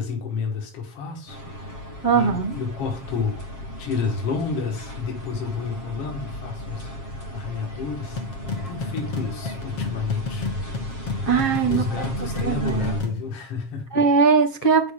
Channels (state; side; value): late; right; 7.4 ms